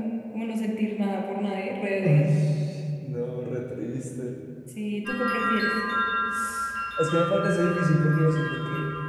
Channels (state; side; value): identical; both; correlation 1.00